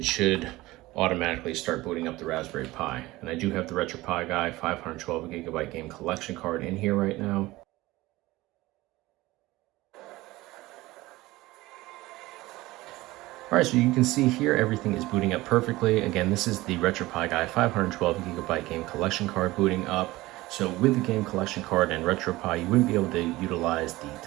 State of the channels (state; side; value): quieter; left; 19.0 dB